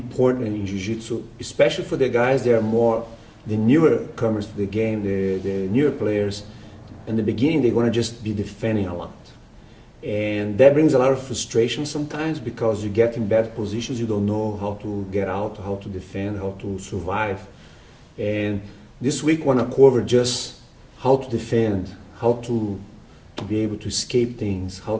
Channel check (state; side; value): identical; both; correlation 1.00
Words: in Jiu-Jitsu, especially for the guys that are more the newer comers to the game, the newer players. In the beginning, they're going to just be defending a lot. And that brings a lot of frustration sometimes because you get in bad positions, you don't know how to get out, how to defend, how to survive. And this week I want to cover just how to defend, how to be able to escape things, how